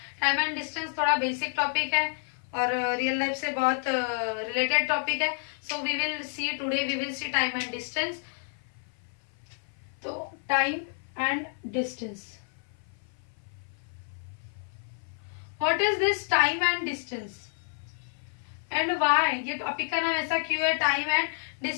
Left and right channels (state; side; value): silent; right; 56 dB below the other